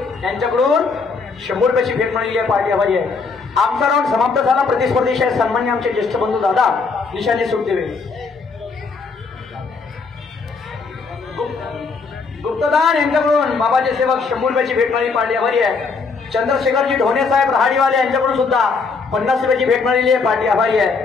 यांच्याकडून 100 रुपयाची भेट मिळालेली आहे. पार्टी आभारी आहे. आमचा राऊंड समाप्त झाला. प्रतिस्पर्धी सन्मान्य आमचे ज्येष्ठ बंधू दादा निशांनी सुट देवे. गुप्तदान यांच्याकडून बाबाचे सेवक 100 रुपयाची भेट मिळाली. पार्टी आभारी आहे. चंद्रशेखरजी ढोणे साहेब रहाडीवाले यांच्याकडून सुद्धा 50 रुपयाची भेट मिळालेली आहे. पार्टी आभारी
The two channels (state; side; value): quieter; right; 4.6 dB